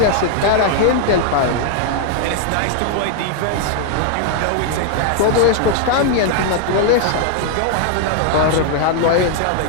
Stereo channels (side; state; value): both; different; correlation 0.00